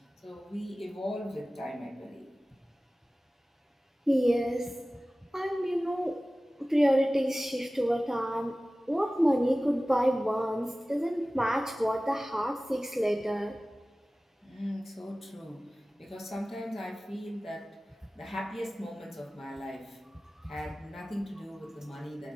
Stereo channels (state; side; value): normal; both; correlation 0.97